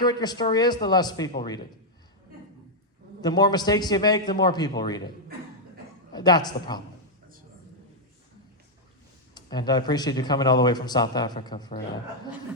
your story is, the less people read it. The more mistakes you make, the more people read it. That's the problem. And I appreciate you coming all the way from South Africa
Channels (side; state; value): both; normal; correlation -0.03